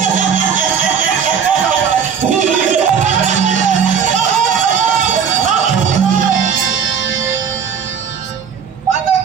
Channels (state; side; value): quieter; left; 7.2 dB